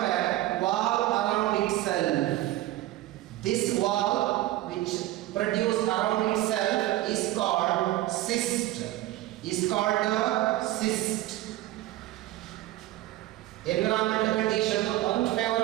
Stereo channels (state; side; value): quieter; left; 15.9 dB